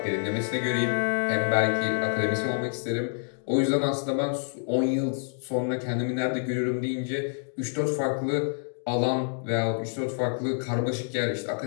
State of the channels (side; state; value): right; silent; digital silence